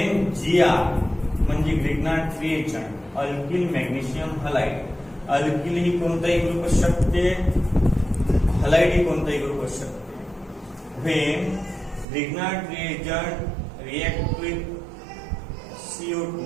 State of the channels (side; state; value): left; drops out; at 12.1 s